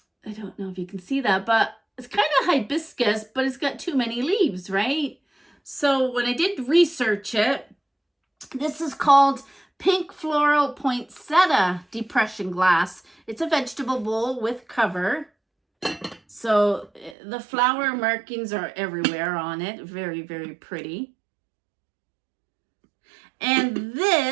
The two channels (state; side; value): drops out; left; at 17.2 s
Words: don't know if you can see that, but it's kind of hibiscus, but it's got too many leaves, right? So when I did research it, this is called Pink Floral Poinsettia Depression Glass. It's a vegetable bowl with cover. So the flower markings are everywhere on it. Very, very pretty. And